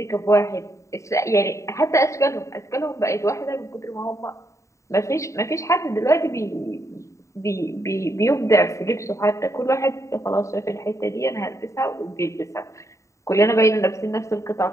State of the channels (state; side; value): late; right; 0.14 ms